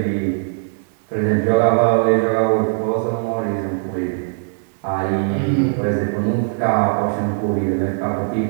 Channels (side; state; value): left; silent; digital silence